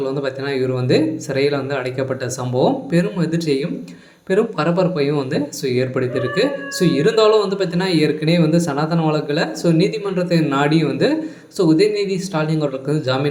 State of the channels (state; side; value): identical; both; correlation 1.00